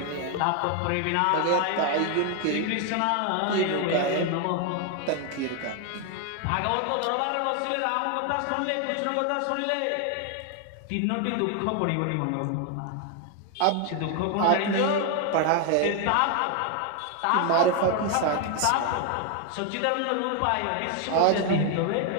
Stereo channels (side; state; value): both; different; correlation 0.01